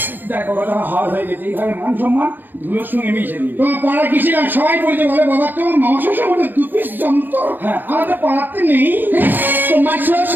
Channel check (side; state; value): left; late; 0.090 ms